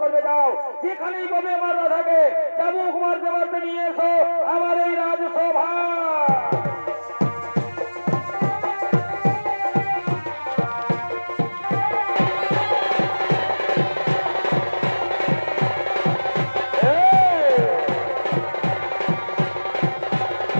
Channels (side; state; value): both; inverted; correlation -1.00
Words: যাও যেখানেই পাবে আমার রাধাকে চাবুক মারতে মারতে নিয়ে এসো আমার এই রাজসভা।